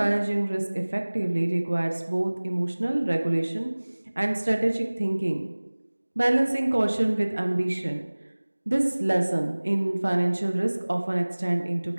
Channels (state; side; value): inverted; both; correlation -1.00